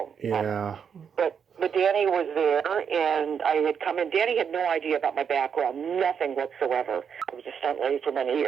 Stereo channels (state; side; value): quieter; left; 7.2 dB